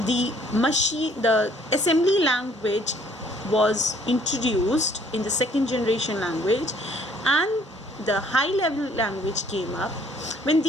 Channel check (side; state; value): both; normal; correlation 0.61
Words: the assembly language was introduced in the second generation language and the high level language came up, when